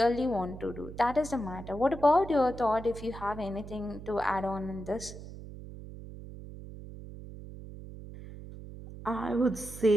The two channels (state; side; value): noise; right; hum, 13 dB below the sound